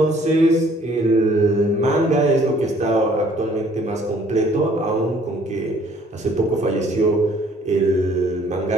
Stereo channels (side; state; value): both; normal; correlation 0.59